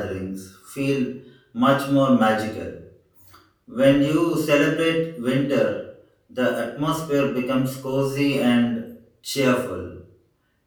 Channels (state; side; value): identical; both; correlation 1.00